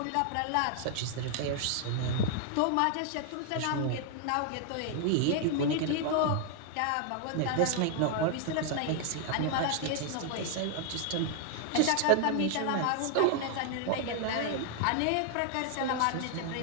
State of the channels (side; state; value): both; different; correlation 0.00